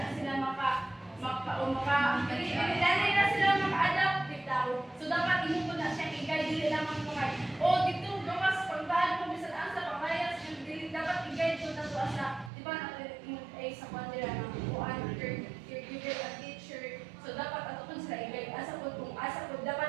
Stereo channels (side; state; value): left; drops out; at 12.5 s